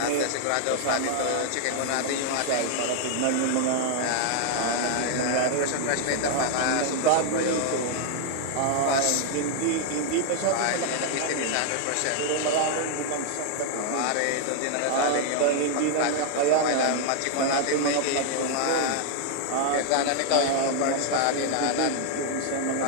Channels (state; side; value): different; both; correlation 0.00